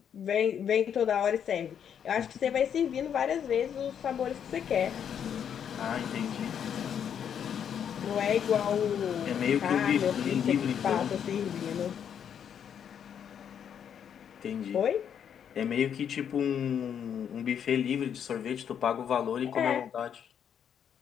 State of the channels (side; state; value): right; quieter; 8.4 dB